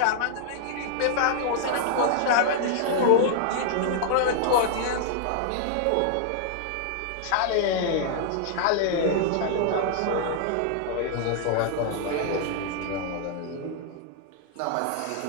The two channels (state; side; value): different; both; correlation -0.01